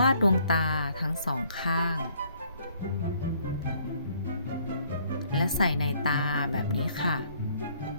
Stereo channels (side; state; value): both; inverted; correlation -0.63